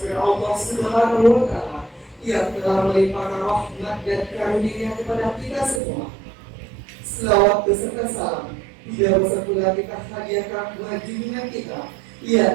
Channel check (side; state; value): left; drops out; at 5.8 s